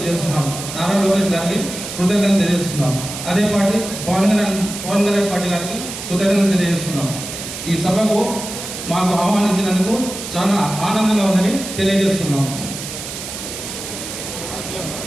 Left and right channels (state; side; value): noise; right; hiss, 8 dB below the sound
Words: నారా లోకేష్ గారికి కృతజ్ఞతలు తెలియజేస్తున్నాం. అదే పార్టీ పవన్ కళ్యాణ్ పార్టీ గారికి కృతజ్ఞతలు తెలియజేస్తున్నాం. ఈ సభకు మాకు ఆహ్వానించినందుకు చాలా ఆనందంగా ఉందని తెలియజేస్తున్నాం.